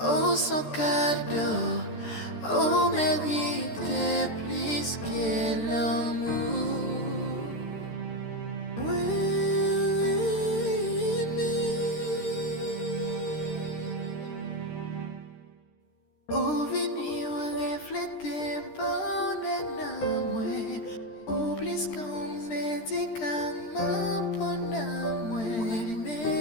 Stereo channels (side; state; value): right; late; 13 ms